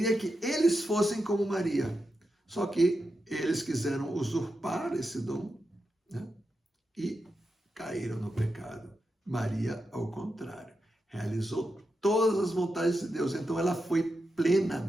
que eles fossem como Maria. Só que eles quiseram usurpar esse dom, né? E caíram no pecado. Maria, ao contrário, realizou todas as vontades de Deus. Então ela foi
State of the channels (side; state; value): both; normal; correlation 0.88